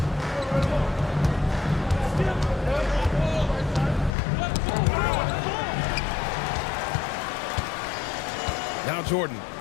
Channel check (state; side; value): drops out; right; at 4.1 s